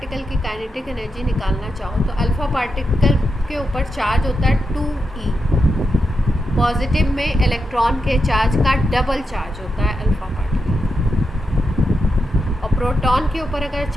की काइनेटिक एनर्जी निकालना चाहो तो अल्फा पार्टिकल के ऊपर चार्ज होता है 2e। पॉजिटिव में इलेक्ट्रॉन के चार्ज का डबल चार्ज होता है अल्फा पार्टिकल। और प्रोटॉन के ऊपर अगर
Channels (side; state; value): both; normal; correlation 0.86